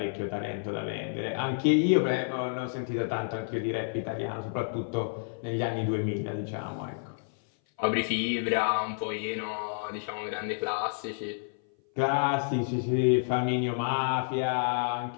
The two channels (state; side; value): silent; right; 56 dB below the other